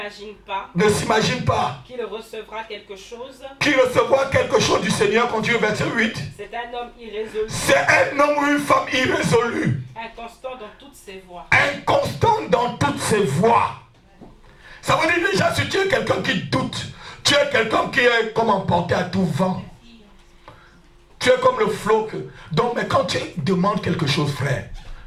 s'imagine pas qu'il recevra quelque chose du Seigneur. Continue verset 8. C'est un homme irrésolu. C'est un homme ou une femme irrésolue. Inconstant dans toutes ses voies. Inconstant dans toutes ses voies. Ça veut dire déjà, si tu es quelqu'un qui doute, tu es quelqu'un qui est comme emporté à tout vent. Tu es comme le flot. Donc, mais quand tu demandes quelque chose, frère,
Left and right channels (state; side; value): identical; both; correlation 1.00